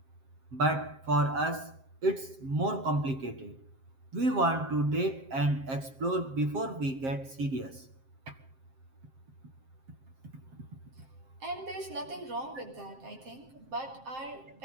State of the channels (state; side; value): late; left; 7.6 ms